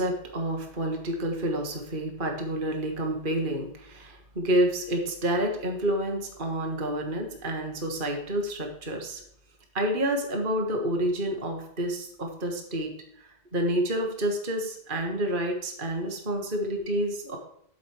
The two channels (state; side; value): late; left; 2.4 ms